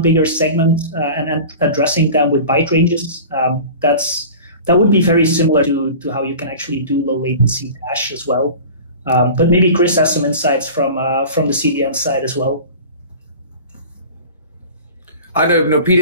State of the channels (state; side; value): inverted; both; correlation -0.38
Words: bigger segment and addressing them with byte ranges. That would be very similar to how you can actually do low latency dash as well. But maybe Chris has some insights from the CDN side as well. I don't know,